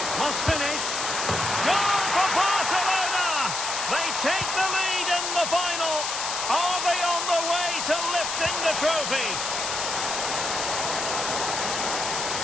Must finish. Goal for Barcelona! They take the lead in the final. Are they on the way to lifting the trophy?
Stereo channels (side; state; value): left; noise; hiss, 3 dB below the sound